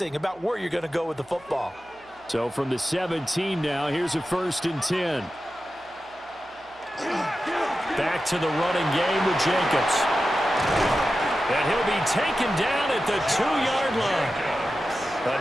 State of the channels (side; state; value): right; noise; hum, 29 dB below the sound